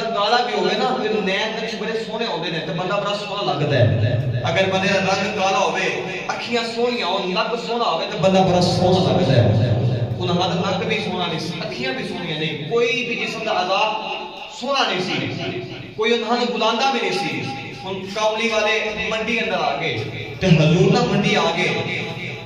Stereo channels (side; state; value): both; identical; correlation 1.00